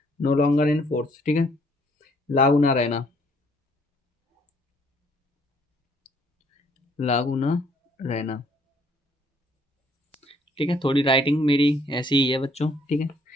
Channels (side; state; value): both; normal; correlation 0.64